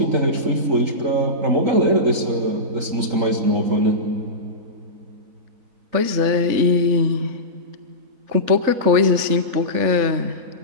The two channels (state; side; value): late; left; 4.0 ms